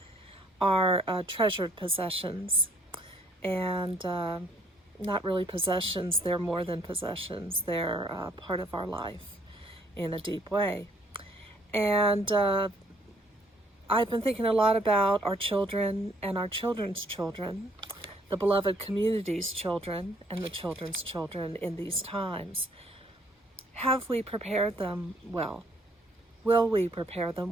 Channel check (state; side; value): normal; both; correlation 0.64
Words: are treasured possessions. And not really possessions, they're more than possessions. They're part of our life in a deep way. And I've been thinking a lot about our children and our children's children, the beloved community's children and the children's children in these times. Have we prepared them well? Will we prepare them